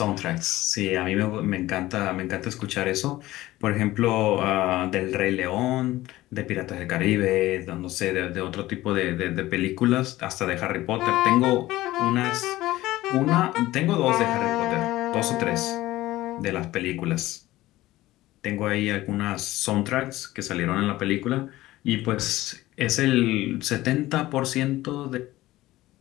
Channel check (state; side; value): quieter; right; 16.9 dB